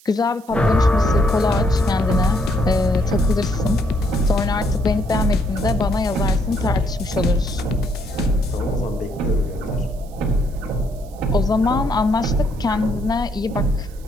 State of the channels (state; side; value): noise; right; hiss, 26 dB below the sound